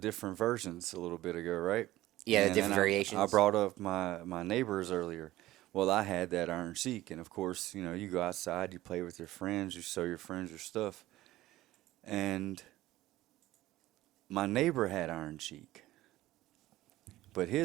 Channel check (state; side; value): quieter; left; 16.2 dB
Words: versions a little bit ago, right? Yeah, the And different then variations. I brought up my neighbors earlier. Well, I had that Iron Sheik, and of course, you know, you go outside, you play with your friends, you show your friends your stuff. And my neighbor had Iron Sheik, but